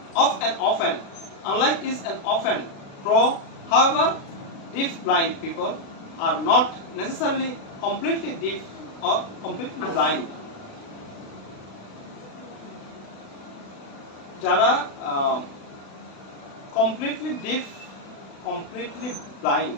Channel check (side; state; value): right; late; 36 ms